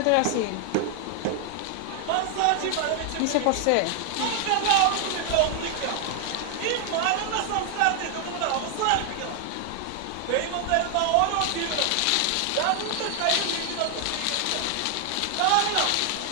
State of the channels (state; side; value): different; both; correlation 0.00